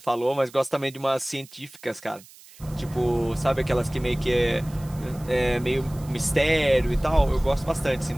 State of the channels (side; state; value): right; noise; hiss, 22 dB below the sound